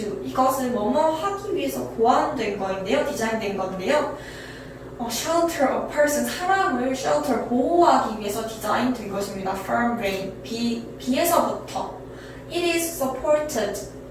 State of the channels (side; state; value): both; identical; correlation 1.00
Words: 이것은 뭐뭐 하기 위해서 고안된 거인데요. 디자인된 건데요. shelter a person 사람을 shelter 보호하기 위해서 디자인된 것입니다. From rain 비에서부터 It is supported